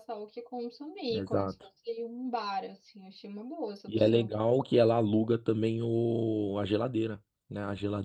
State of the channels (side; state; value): both; identical; correlation 1.00